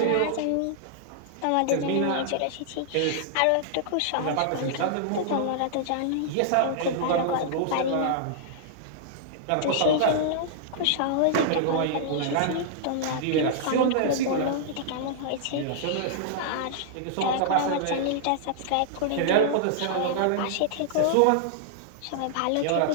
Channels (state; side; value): different; both; correlation -0.01